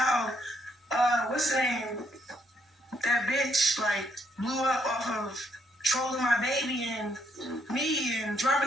what's the name? That bitch like blew up off of trolling my baby and me and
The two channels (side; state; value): both; normal; correlation 0.72